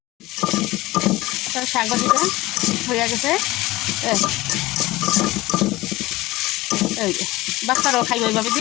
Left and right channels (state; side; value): quieter; right; 19.2 dB